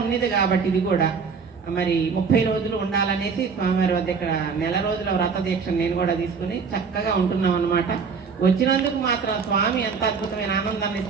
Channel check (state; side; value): quieter; left; 5.6 dB